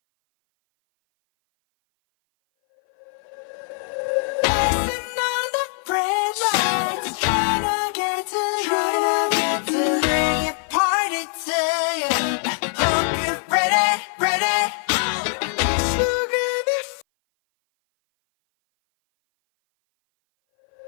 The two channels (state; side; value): silent; right; 58 dB below the other